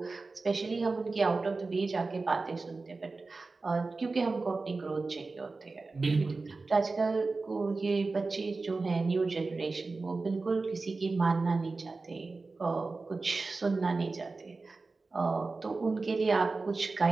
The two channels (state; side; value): quieter; left; 3.8 dB